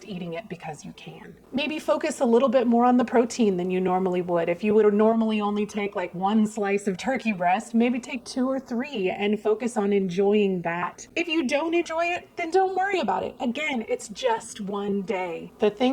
eating it because you can. Maybe focus a little bit more on the protein than you normally would. If you would normally only take like 1 slice of turkey breast, maybe take 2 or 3 and focus on enjoying that. If you don't enjoy it, then don't worry about it. Again, it's just one day. The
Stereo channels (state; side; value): identical; both; correlation 1.00